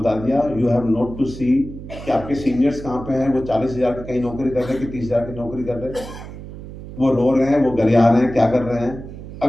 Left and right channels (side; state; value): right; noise; hum, 12 dB below the sound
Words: दिया, यू हैव नोट टू सी कि आपके सीनियर्स कहां पे हैं। वो 40,000 की कहीं नौकरी कर रहे हैं कि 30,000 की नौकरी कर रहे हैं, वो रो रहे हैं, वो गरिया रहे हैं, क्या कर रहे हैं।